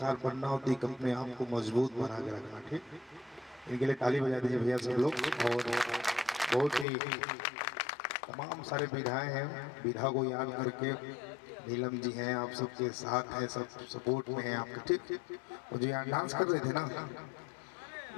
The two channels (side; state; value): right; drops out; at 6.9 s